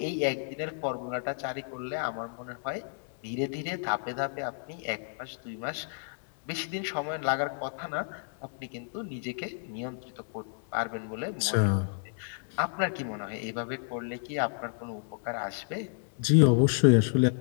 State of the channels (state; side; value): silent; right; digital silence